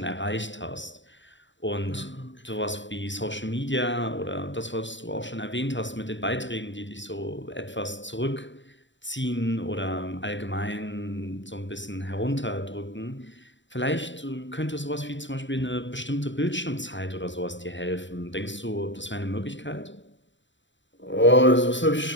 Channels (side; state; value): right; late; 0.54 ms